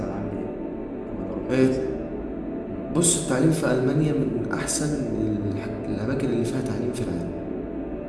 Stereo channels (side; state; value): both; identical; correlation 1.00